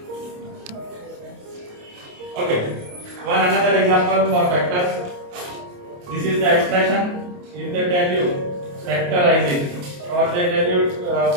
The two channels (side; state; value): left; late; 28 ms